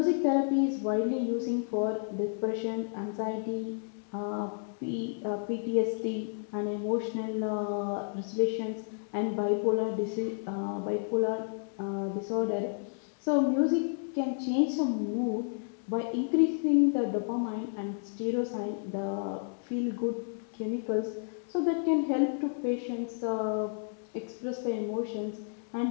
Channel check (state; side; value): silent; right; digital silence